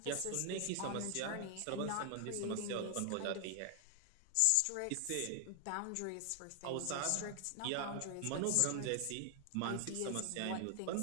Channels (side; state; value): both; different; correlation 0.00